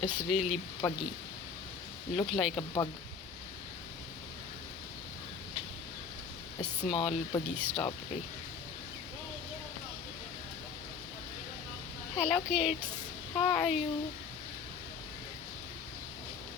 really buggy. Look like a bug. A small buggy strawberry. Hello kids, how are you?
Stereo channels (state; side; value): quieter; right; 5.8 dB